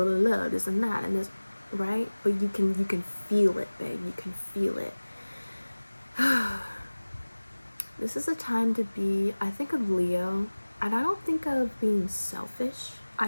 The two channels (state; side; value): inverted; both; correlation -1.00